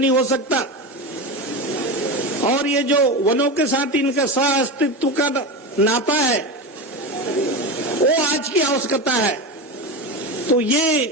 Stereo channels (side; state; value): both; normal; correlation 0.21